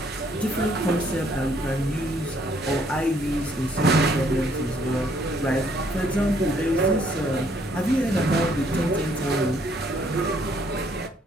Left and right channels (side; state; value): both; normal; correlation 0.66